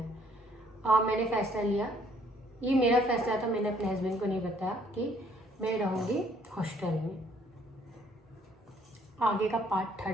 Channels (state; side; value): normal; both; correlation 0.63